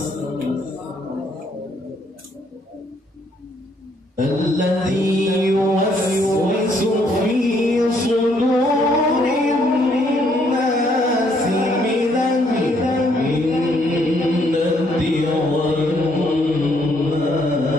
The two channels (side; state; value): both; normal; correlation 0.69